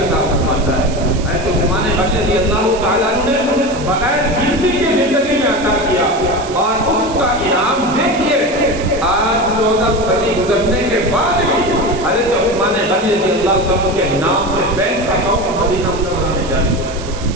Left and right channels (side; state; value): right; noise; hiss, 15 dB below the sound